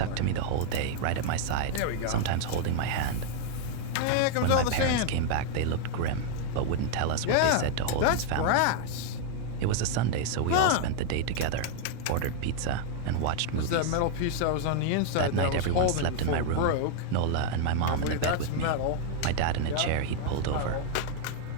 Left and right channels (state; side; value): different; both; correlation 0.00